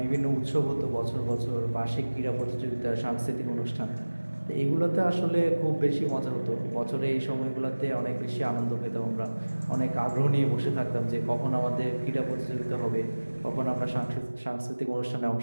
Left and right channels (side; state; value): both; inverted; correlation -1.00